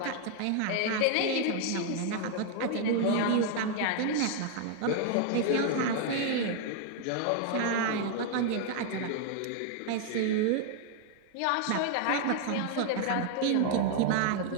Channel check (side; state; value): both; different; correlation 0.00